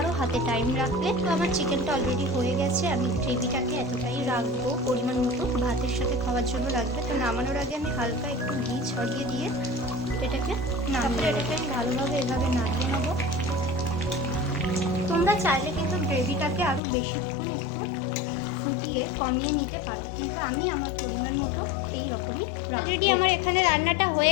হাতে টাইম রাখলে। তো আমার চিকেনটা অলরেডি হয়ে গেছে। আমি গ্রেভিটাকে এতটাই রাখবো, পরিমাণ মতো ভাতের সাথে খাওয়ার জন্য লাগবে। তো নামানোর আগে আমি হালকা একটু ঘি ছড়িয়ে দিয়ে এটাকে এটাকে আমি ভালোভাবে এভাবে নাড়িয়ে নেবো। তোমরা চাইলে কিন্তু গ্রেভিটাকে আরও বেশিক্ষণ একটু ফুটিয়ে কমিয়ে নিতে পারো, কিন্তু আমি আমার পরিমাণ মতো এই রকমই। অলরেডি আমার এখানে রান্নাটা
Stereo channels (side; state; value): right; drops out; at 16.8 s